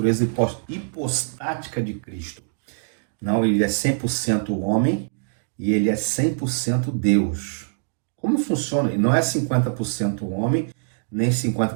hipostática de Cristo. Não, ele é 100% homem e ele é 100% Deus. Como funciona? Ele não é 50% homem, nem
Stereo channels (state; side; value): silent; left; digital silence